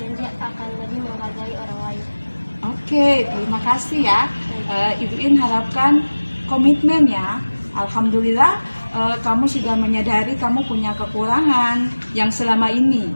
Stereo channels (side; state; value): both; inverted; correlation -1.00